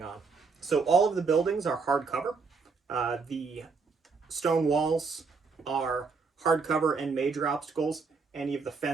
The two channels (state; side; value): quieter; left; 4.7 dB